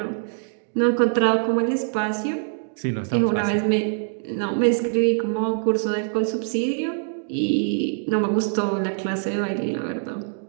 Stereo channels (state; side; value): silent; left; digital silence